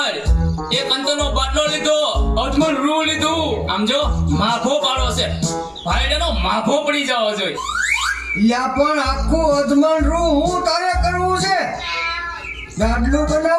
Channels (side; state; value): both; identical; correlation 1.00